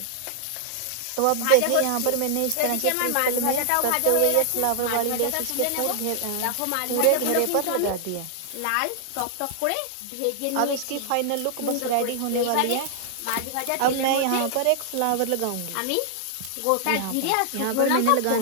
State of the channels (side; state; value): both; different; correlation -0.01